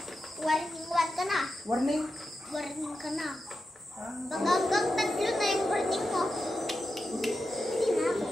ka na. Warning. Warning ka na. Ah, Hanggang 3 na yung warning mo. Hindi na ako.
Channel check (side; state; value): both; normal; correlation 0.89